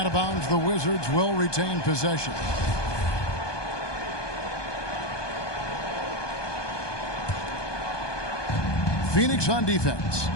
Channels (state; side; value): late; right; 1.2 ms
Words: of bounds. The Wizards will retain possession. Phoenix on defense.